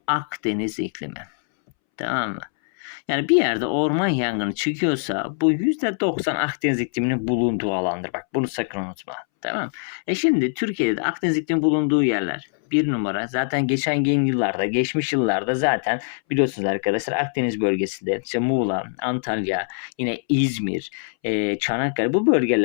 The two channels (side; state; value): right; silent; 63 dB below the other